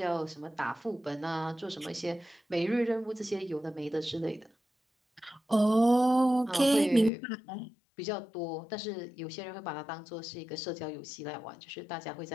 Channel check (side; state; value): right; drops out; at 7.1 s